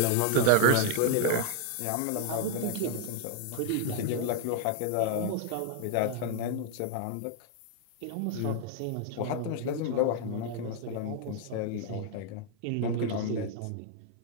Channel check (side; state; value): both; different; correlation 0.00